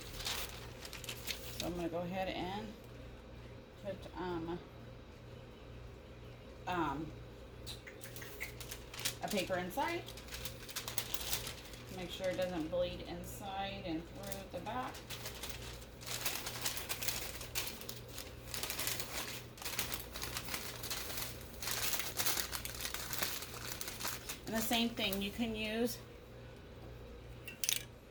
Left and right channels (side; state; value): both; identical; correlation 1.00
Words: So I'm going to go ahead and put a paper inside. Make sure it doesn't bleed inside and through the back. And the same thing, you can use